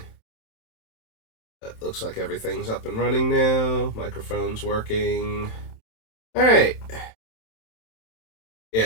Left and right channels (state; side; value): late; right; 27 ms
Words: It looks like everything's up and running now. Microphone's working. Alright.